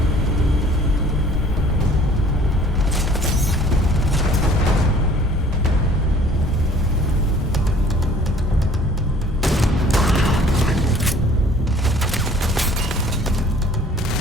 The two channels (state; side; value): normal; both; correlation 0.53